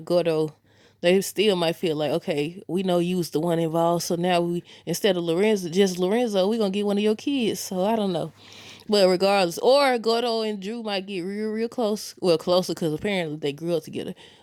Gordo, they still might feel like, okay, we know you was the one involved, so now instead of Lorenzo, we gonna get one of your kids. So I don't know. But regardless, or Gordo and Drew might get real, real close. Well, closer because apparently they grew up together.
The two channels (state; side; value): identical; both; correlation 1.00